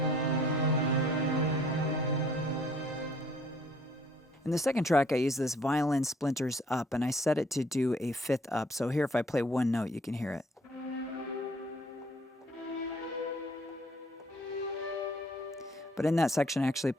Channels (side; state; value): both; normal; correlation 0.60